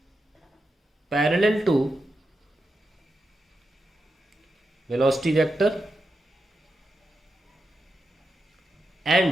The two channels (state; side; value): normal; both; correlation 0.87